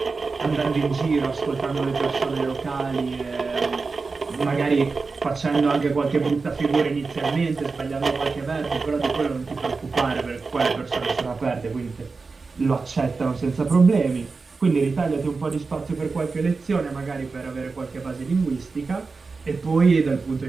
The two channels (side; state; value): left; quieter; 4.3 dB